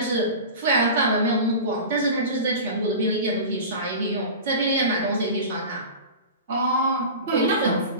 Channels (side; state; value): both; inverted; correlation -0.32